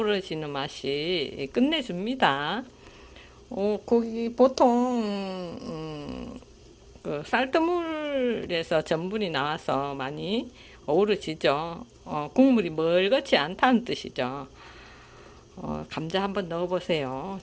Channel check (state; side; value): identical; both; correlation 1.00